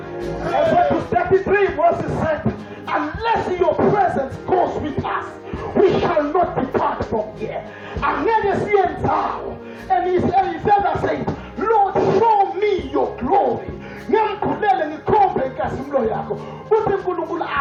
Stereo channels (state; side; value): identical; both; correlation 1.00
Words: Exodus 33 verses said, unless your presence goes with us, we shall not depart from here. And he further said, Lord, show me your glory.